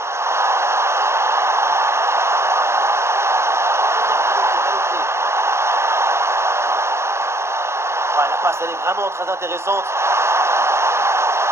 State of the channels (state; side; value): late; left; 0.13 ms